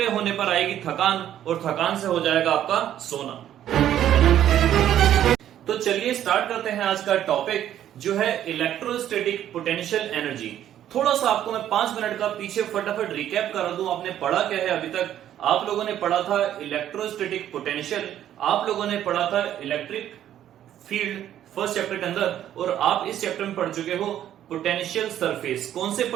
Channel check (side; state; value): left; quieter; 11.2 dB